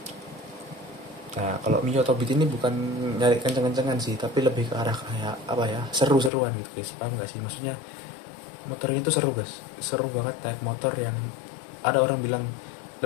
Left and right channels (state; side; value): drops out; right; at 6.3 s